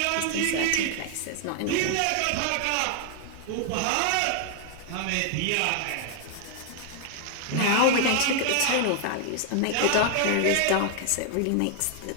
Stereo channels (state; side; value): different; both; correlation 0.00